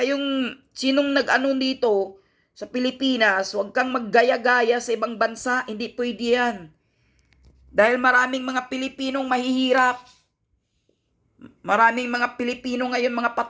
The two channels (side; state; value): both; identical; correlation 1.00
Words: sinong nag-ano dito sa Pilipinas, huwag kang maggaya-gaya sa ibang bansa. Hindi pwede yan. Dahil maraming mga Pilipinong mahihirap. Maraming mga Pilipino ngayon mga